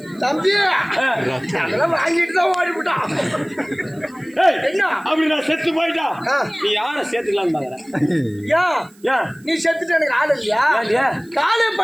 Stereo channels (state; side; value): noise; right; hiss, 29 dB below the sound